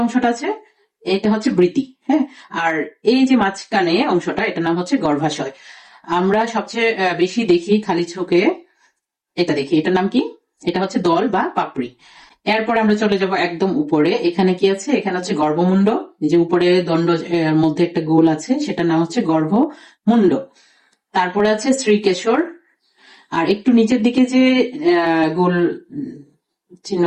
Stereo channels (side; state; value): both; identical; correlation 1.00